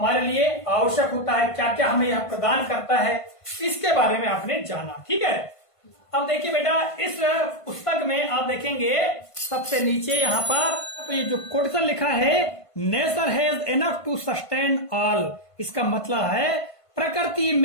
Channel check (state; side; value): late; right; 1.5 ms